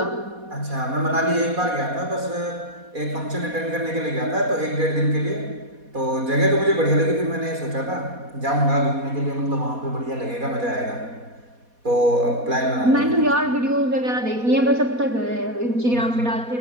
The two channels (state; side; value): late; left; 4.2 ms